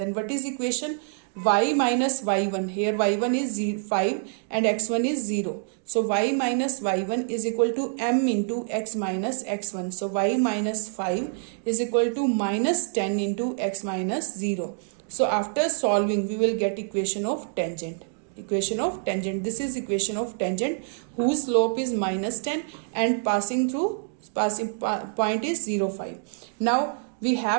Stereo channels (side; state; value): left; silent; digital silence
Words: what is equation? Y minus y1. Here y1 is 5 and x1 is 0. So y minus y1 is equal to m into x minus x1. So y minus 5 is equal to minus 10 into x minus 0. So after solving, we will get equation of tangent. Equation of tangent. This is equation of tangent whose slope is minus 10 and passing point is 0, 5. Now we